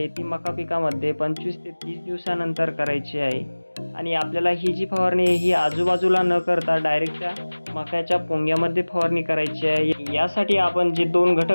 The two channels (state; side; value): inverted; both; correlation -1.00